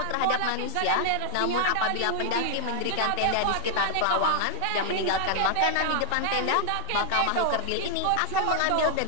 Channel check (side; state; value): both; different; correlation 0.00